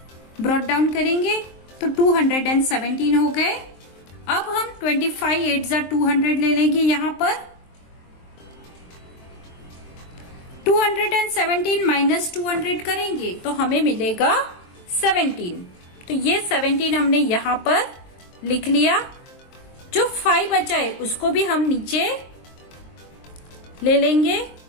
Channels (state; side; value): late; right; 23 ms